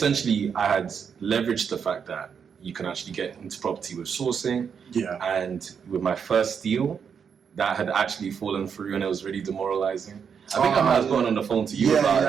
I had leveraged the fact that you can actually get into property with sourcing. Yeah. And with my first deal, that had actually fallen through, and it was really demoralizing. I think I might have gone on the phone to you about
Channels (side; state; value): left; quieter; 6.9 dB